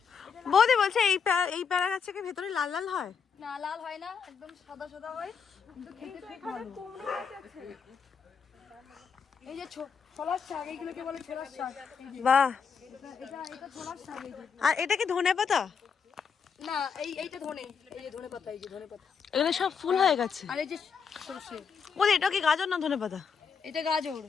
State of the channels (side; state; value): right; quieter; 6.3 dB